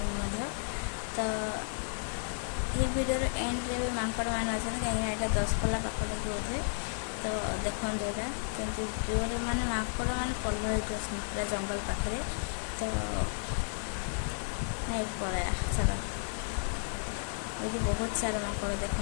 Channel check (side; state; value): right; silent; 56 dB below the other